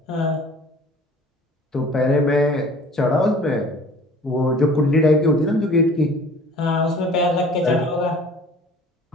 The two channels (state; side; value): normal; both; correlation 0.48